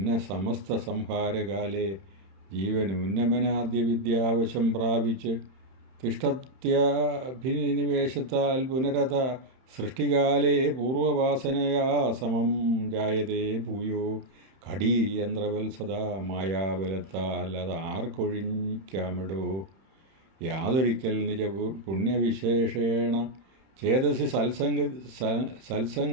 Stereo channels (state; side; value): late; left; 31 ms